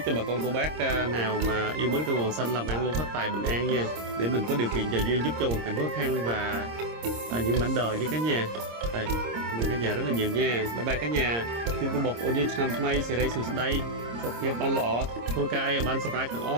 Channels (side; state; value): left; late; 26 ms